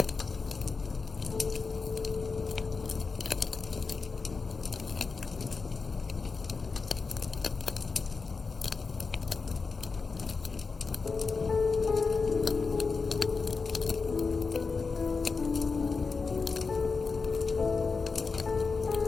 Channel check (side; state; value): right; quieter; 4.5 dB